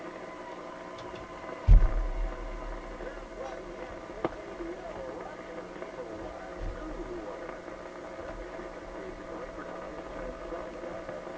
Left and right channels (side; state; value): both; identical; correlation 1.00